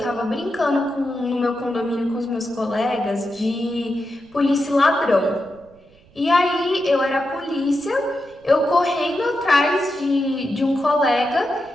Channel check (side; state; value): right; noise; rumble, 28 dB below the sound